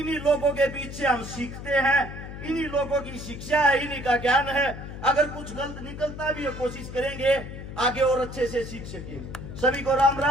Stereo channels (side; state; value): left; noise; hum, 10 dB below the sound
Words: लोगों के बीच से हम सीखते हैं, इन्हीं लोगों की शिक्षा है, इन्हीं का ज्ञान है। अगर कुछ गलत निकलता भी है, कोशिश करेंगे आगे और अच्छे से सीख सके। सभी को राम